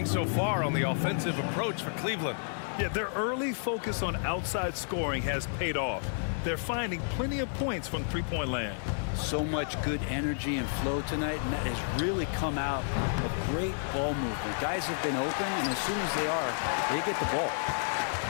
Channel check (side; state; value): right; silent; digital silence